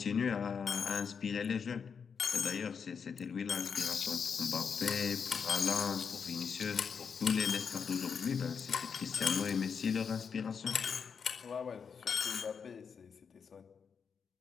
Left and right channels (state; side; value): quieter; right; 6.3 dB